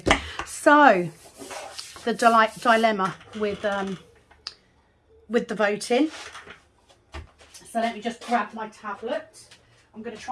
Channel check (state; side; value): identical; both; correlation 1.00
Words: So the dilemma with the voting. So let me just grab my tablet. I'm going to